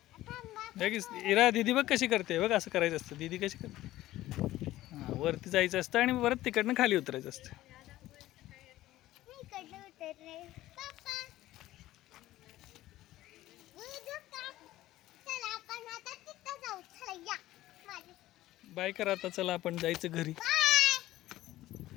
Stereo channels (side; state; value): right; quieter; 15.6 dB